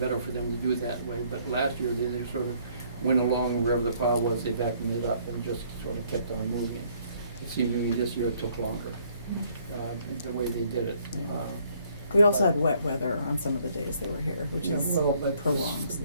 for them to do it that way, but last year, they just sort of went along wherever the pile was, they vacuumed it up and just sort of kept on moving. It seemed to me this year it took longer, the way they did it. we also had wet weather on some of the days they were here, which Yeah, is well, but prolongs.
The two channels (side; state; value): both; inverted; correlation -0.64